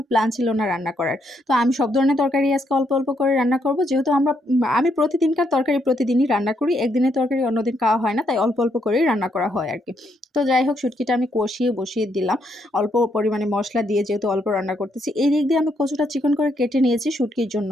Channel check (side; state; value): both; normal; correlation 0.75